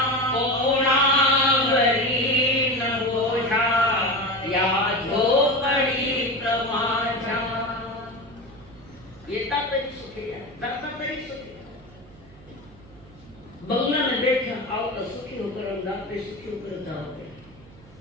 कोणावरी न बोझा या झोपड़ी प्रमाझा। ये तातरी सुखेया, दाता करी सुखेया। बंगला में बैठे आओ तो सुखी होकर हम दाते सुखी होकर जाओगे।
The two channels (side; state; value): right; noise; hum, 23 dB below the sound